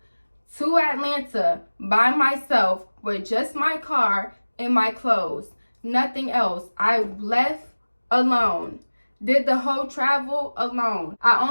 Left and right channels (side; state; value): both; inverted; correlation -1.00